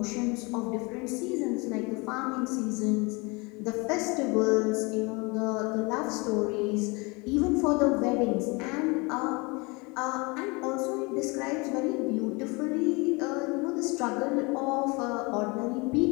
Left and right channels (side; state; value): right; quieter; 27.5 dB